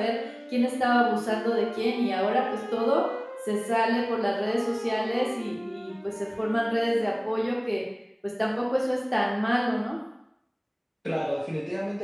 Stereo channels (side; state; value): both; identical; correlation 1.00